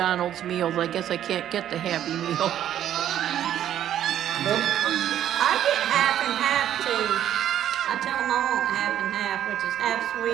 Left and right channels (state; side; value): quieter; left; 11.0 dB